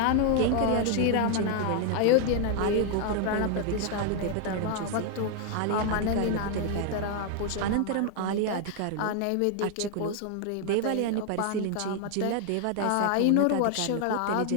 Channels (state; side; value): different; both; correlation 0.00